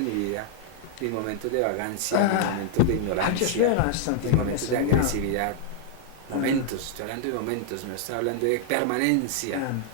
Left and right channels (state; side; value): different; both; correlation 0.00